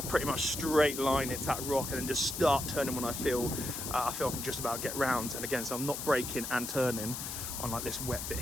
pretty much straight line it to that rock and then just start turning when I feel I can just about get round. And again, so I'm not braking and turning on like this wet bit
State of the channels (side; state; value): left; noise; hiss, 5 dB below the sound